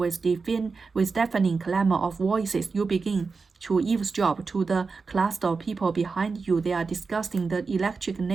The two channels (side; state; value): left; quieter; 4.6 dB